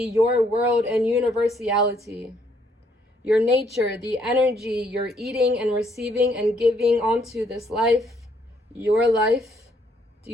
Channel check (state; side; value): normal; both; correlation 0.69